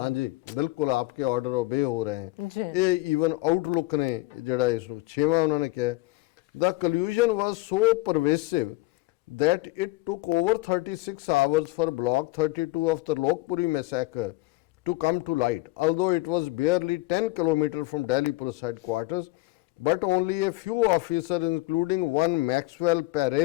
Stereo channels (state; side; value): quieter; right; 20.4 dB